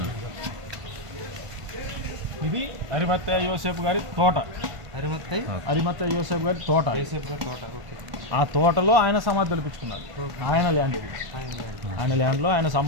ఇది అరిమత్తయ్య యోసేపు గారి తోట. అరిమత్తయ్య యోసేపు గారి తోట. ఆ తోటలో ఆయన సమాధి తొలిపించుకున్నారు. ఆయన ల్యాండ్ ఇది. ఆయన ల్యాండ్లో ఆయన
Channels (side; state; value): left; late; 1.5 ms